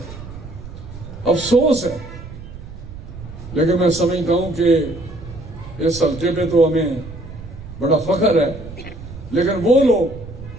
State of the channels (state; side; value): noise; right; rumble, 13 dB below the sound